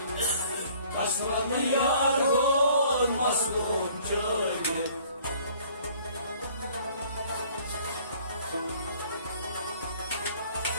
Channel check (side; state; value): both; inverted; correlation -0.56